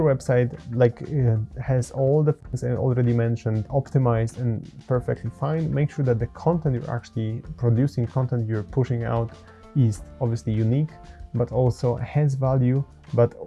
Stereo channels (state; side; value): identical; both; correlation 1.00